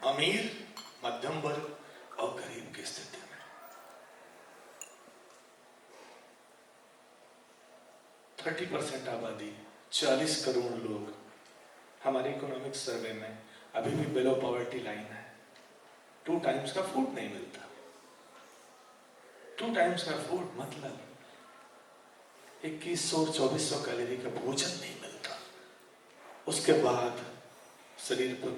अमीर, मध्यम वर्ग और गरीब की स्थिति में। 30% आबादी, 40 करोड़ लोग हमारे इकोनॉमिक सर्वे में अभी भी बिलो पॉवर्टी लाइन है। 2 टाइम्स का फूड नहीं मिलता। 2 टाइम्स का फूड मतलब 2100-2400 कैलोरी का भोजन नहीं मिलता। उसके बाद शरीर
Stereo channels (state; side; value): identical; both; correlation 1.00